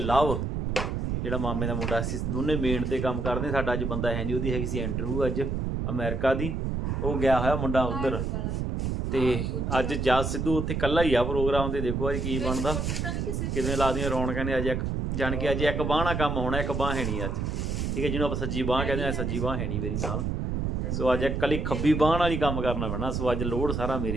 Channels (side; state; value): right; noise; rumble, 1 dB below the sound